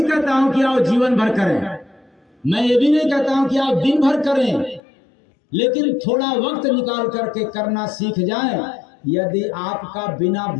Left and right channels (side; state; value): right; drops out; at 4.8 s